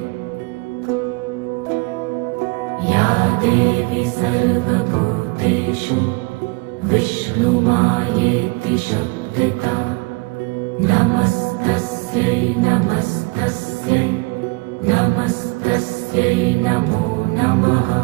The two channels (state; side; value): quieter; left; 27.1 dB